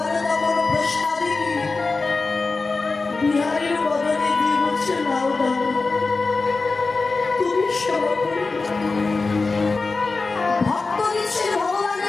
তখন প্রসাদে বিহারীর বদলে দিয়ে বলছে নাও দাও তুমি সেবা করে। ভক্ত দিচ্ছে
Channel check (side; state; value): right; quieter; 3.9 dB